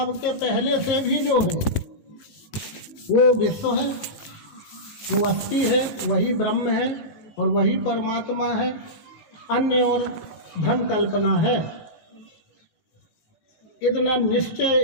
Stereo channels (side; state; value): right; late; 19 ms